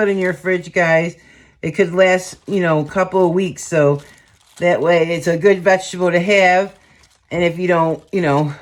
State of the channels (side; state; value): both; identical; correlation 1.00